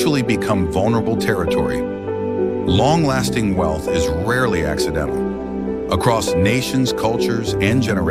become vulnerable territory? Long-lasting wealth is rarely accidental. Across nations, cultures, and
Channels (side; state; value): both; identical; correlation 1.00